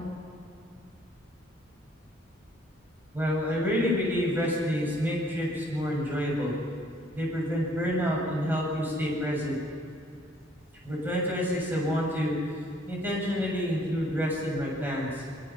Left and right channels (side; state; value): both; normal; correlation 0.62